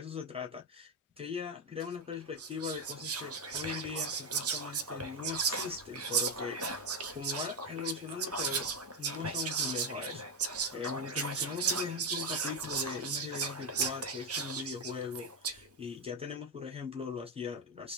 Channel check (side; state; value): both; normal; correlation 0.08